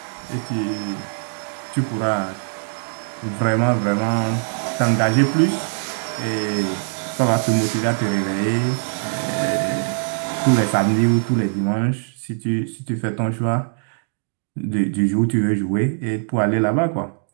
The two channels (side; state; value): left; silent; digital silence